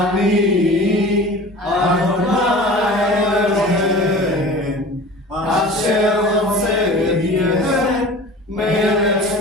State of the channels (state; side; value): normal; both; correlation 0.39